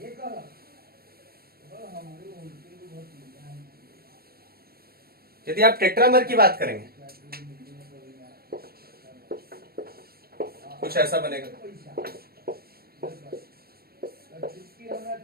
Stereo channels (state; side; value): late; left; 0.44 ms